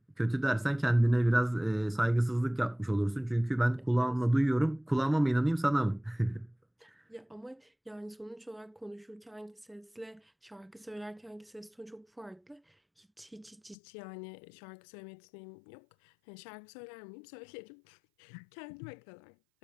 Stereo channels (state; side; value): drops out; right; at 13.8 s